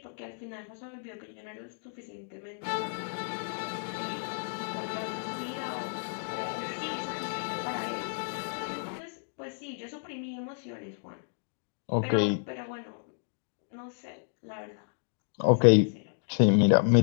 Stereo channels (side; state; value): right; silent; digital silence